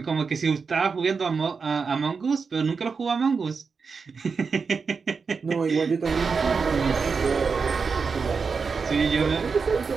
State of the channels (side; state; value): left; quieter; 5.2 dB